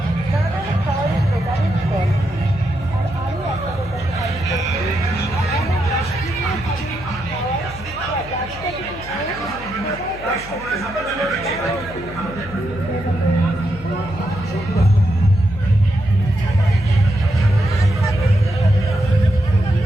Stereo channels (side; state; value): left; noise; hum, 16 dB below the sound